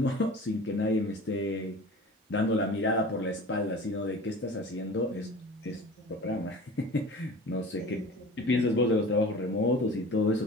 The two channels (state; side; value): normal; both; correlation 0.39